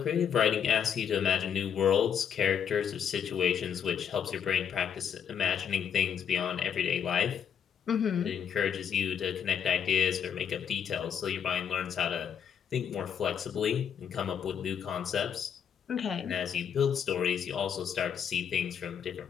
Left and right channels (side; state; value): right; quieter; 8.0 dB